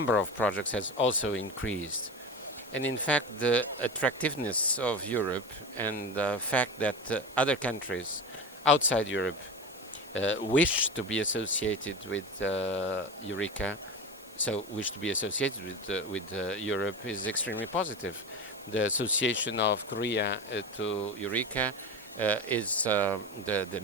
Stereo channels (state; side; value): normal; both; correlation 0.27